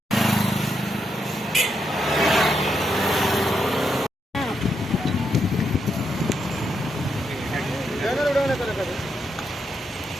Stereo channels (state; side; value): normal; both; correlation 0.81